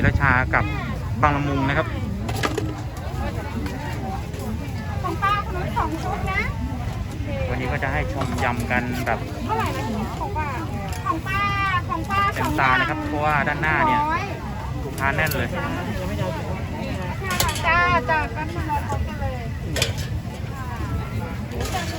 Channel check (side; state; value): both; identical; correlation 1.00